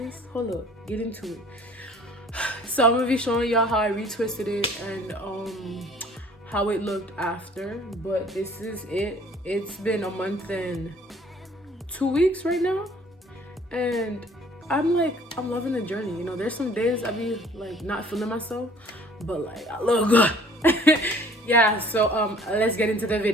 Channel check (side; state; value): both; normal; correlation 0.54